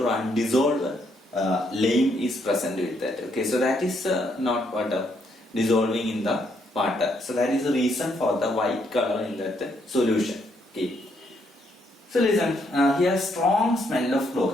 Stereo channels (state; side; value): normal; both; correlation 0.73